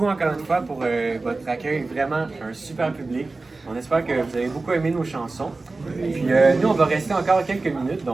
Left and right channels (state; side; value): quieter; left; 3.5 dB